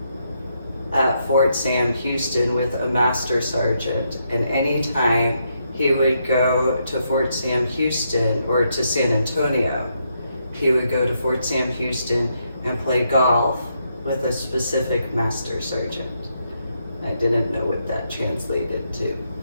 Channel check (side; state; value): both; inverted; correlation -0.79